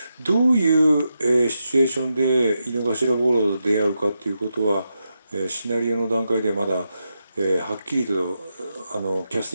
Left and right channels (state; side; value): inverted; both; correlation -0.87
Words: どういう、シチュエーションで井の頭五郎と出会うかっていうことは、シナリオの段階でまだ、はっきりとキャス